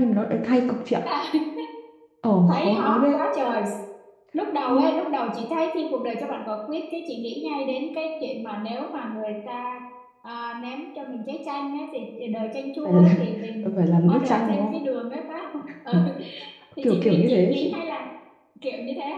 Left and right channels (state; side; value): identical; both; correlation 1.00